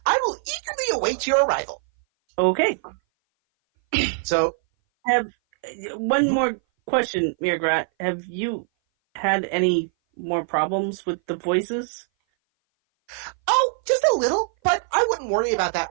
I will eagerly await your arrival. Okay. So, One more question, Mirgrat. Have you had any more problems with the voices? oh, just a little, but I wouldn't worry about that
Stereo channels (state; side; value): silent; left; 58 dB below the other